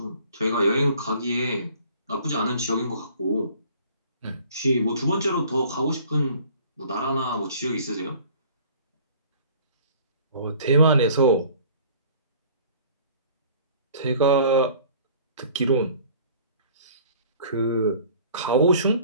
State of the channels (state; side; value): inverted; both; correlation -0.51